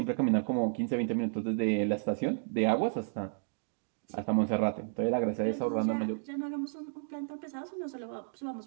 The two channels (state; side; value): silent; left; digital silence